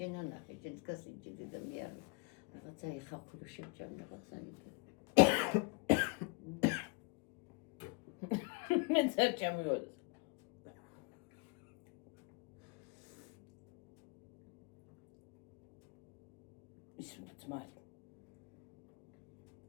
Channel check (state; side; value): quieter; right; 30.1 dB